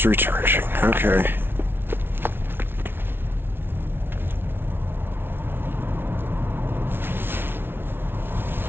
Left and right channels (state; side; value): late; left; 0.11 ms